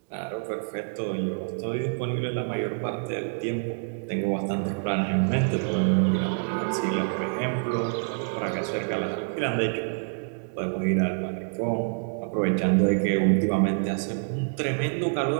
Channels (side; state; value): left; silent; digital silence